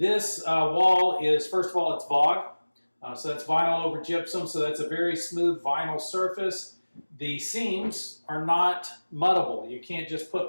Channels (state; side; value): inverted; both; correlation -1.00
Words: wall is, first of all, it's VOG. So that's vinyl over gypsum, so that's a very smooth vinyl surface. The seams are not muddable. You can't just